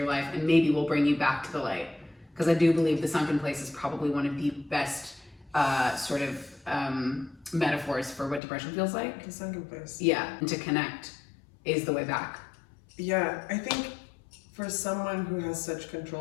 life and maybe will bring you back to the light. Because I do believe the sunken place is probably one of the best metaphors for what depression feels like. The sunken place. Yeah, and to connect is the way back. Yeah, I think for someone who has such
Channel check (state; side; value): drops out; right; at 8.4 s